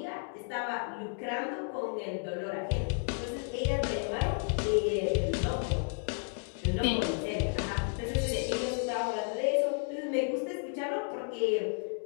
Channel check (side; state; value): right; silent; 56 dB below the other